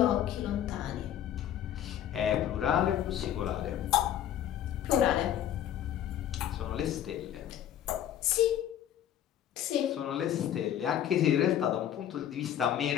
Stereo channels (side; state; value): right; quieter; 10.8 dB